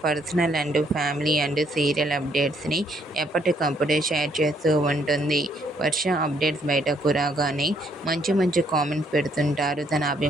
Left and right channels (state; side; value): normal; both; correlation 0.69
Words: personal and family and serial అప్డేట్స్ని ఎప్పటికప్పుడు షేర్ చేస్తూ ఉంటుంది. వర్ష అప్డేట్స్ బయటకు రాగానే మంచి మంచి కామెంట్స్ పెడుతుంటారు తన